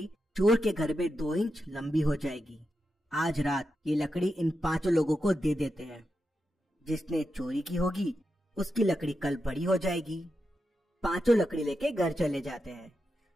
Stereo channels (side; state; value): both; normal; correlation 0.87